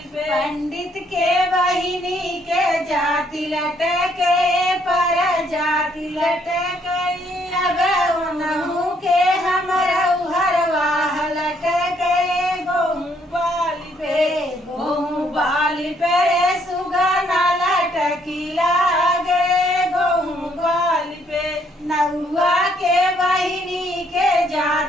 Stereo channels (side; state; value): both; normal; correlation 0.68